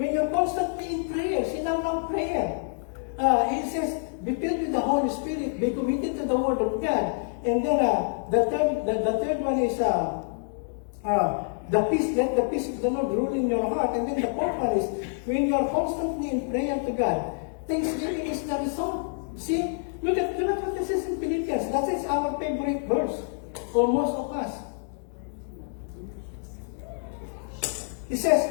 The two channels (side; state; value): right; silent; digital silence